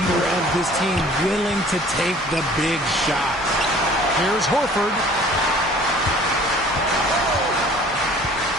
of this team, willing to take the big shots. Here's Horford.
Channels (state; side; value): normal; both; correlation 0.51